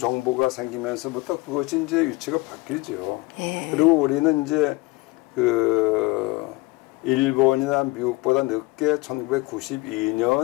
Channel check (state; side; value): quieter; right; 22.9 dB